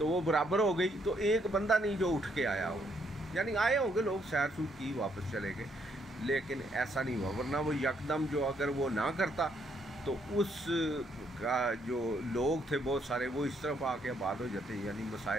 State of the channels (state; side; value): normal; both; correlation 0.72